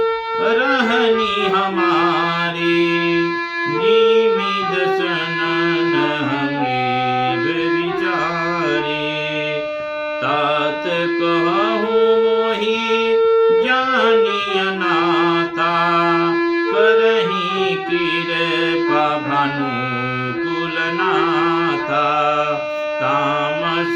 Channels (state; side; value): identical; both; correlation 1.00